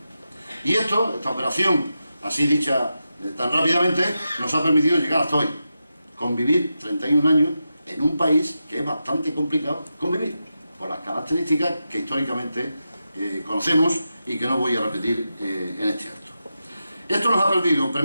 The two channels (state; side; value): inverted; both; correlation -0.89